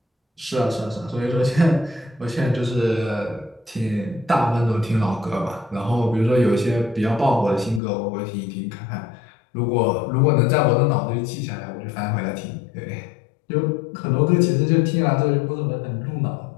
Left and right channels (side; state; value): right; drops out; at 7.8 s